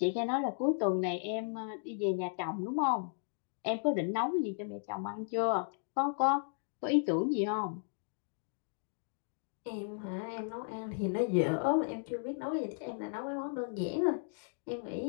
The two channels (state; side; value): silent; right; digital silence